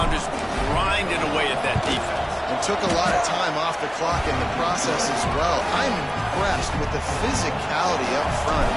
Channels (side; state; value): both; identical; correlation 1.00